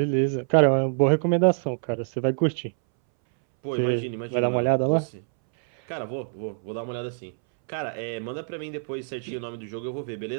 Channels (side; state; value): left; silent; 61 dB below the other